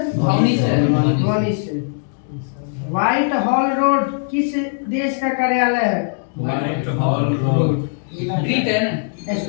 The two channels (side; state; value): right; silent; digital silence